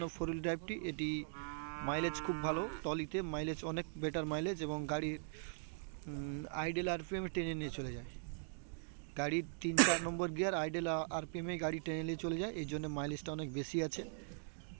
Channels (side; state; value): left; silent; digital silence